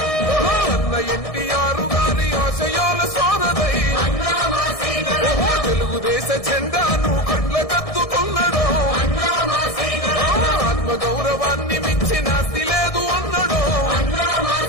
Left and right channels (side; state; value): right; late; 1.6 ms